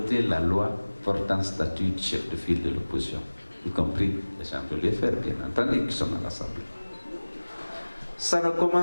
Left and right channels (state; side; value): inverted; both; correlation -1.00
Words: la loi portant statut de chef de file de l'opposition, y compris les gens de l'UFR, bien entendu, qui sont à l'Assemblée. Ça ne